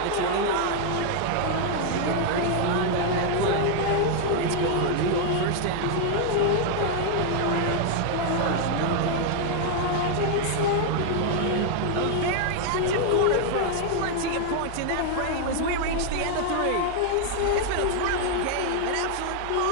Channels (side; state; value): both; different; correlation 0.00